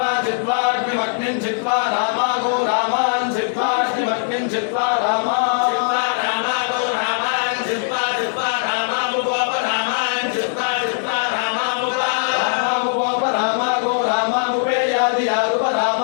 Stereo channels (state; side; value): silent; right; digital silence